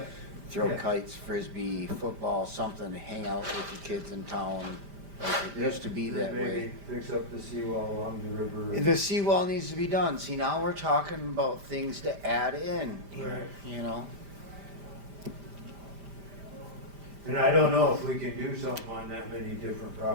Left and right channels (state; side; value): late; left; 5.0 ms